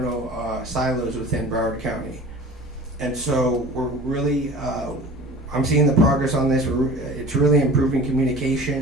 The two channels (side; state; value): both; normal; correlation 0.41